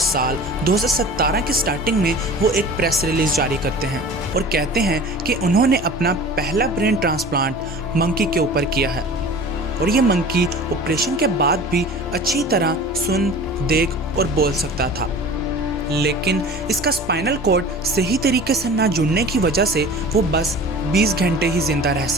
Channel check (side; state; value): both; normal; correlation 0.40